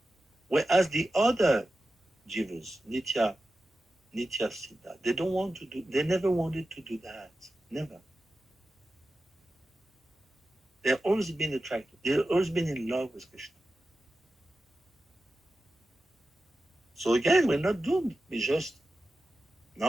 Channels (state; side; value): normal; both; correlation 0.93